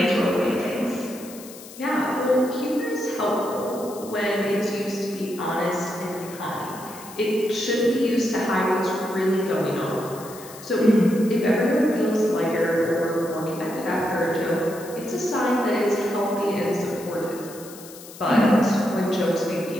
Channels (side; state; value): left; noise; hiss, 17 dB below the sound